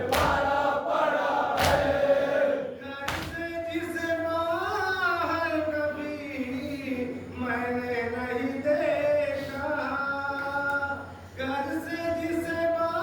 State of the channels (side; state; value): both; identical; correlation 1.00